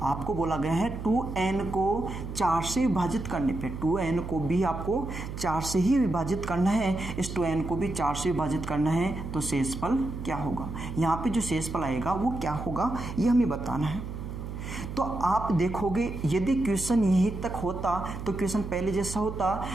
आपको बोला गया है 2n को 4 से विभाजित करने पे, 2n को भी आपको 4 से ही विभाजित करना है, इस 2n को भी 4 से विभाजित करना है, तो शेषफल क्या होगा। यहाँ पे जो शेषफल आएगा वो क्या होगा ये हमें बताना है। तो आप देखोगे यदि क्वेश्चन यहीं तक होता तो क्वेश्चन पहले जैसा होता।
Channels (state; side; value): noise; right; hum, 8 dB below the sound